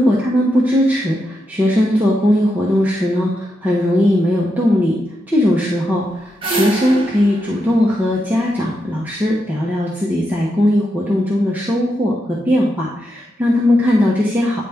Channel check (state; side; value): normal; both; correlation 0.84